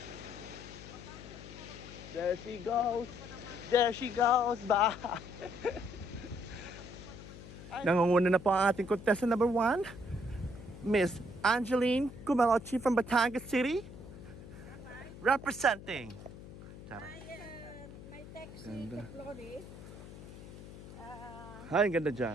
There she goes. There she goes. Bye. Nangunguna na po ang ating contestant number 1. Miss Angeline Kumalochi from Batangas City. Representing. Tara. May text si Ganda. Flores. Ay, ang ganda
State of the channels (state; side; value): noise; left; hum, 14 dB below the sound